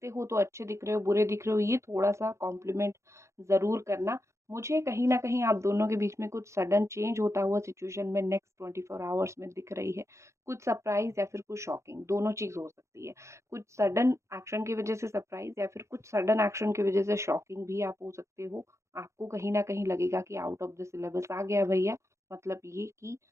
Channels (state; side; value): late; left; 0.14 ms